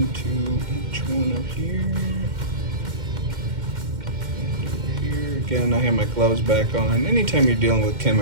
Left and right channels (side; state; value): left; late; 2.1 ms